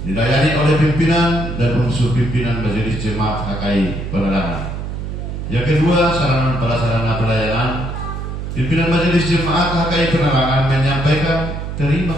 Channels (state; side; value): noise; right; hum, 6 dB below the sound